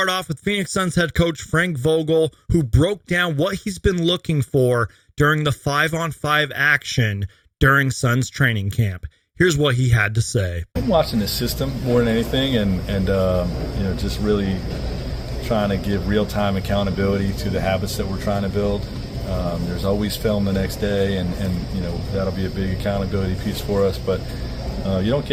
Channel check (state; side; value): identical; both; correlation 1.00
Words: off with Phoenix Suns head coach Frank Vogel, who broke down what he's been looking for during the 5-on-5 action during Suns training camp. Here's what he had to say. I'm watching the system more than anything, and just really trying to give real-time accountability to the habits that we're trying to build. There's always film the next day, and that'll be a big accountability piece for us, but you don't